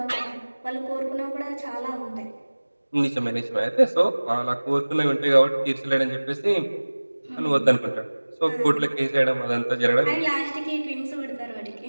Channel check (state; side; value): inverted; both; correlation -1.00